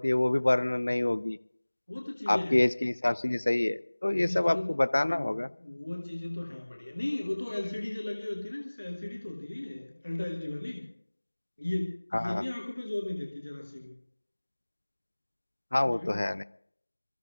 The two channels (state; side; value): inverted; both; correlation -1.00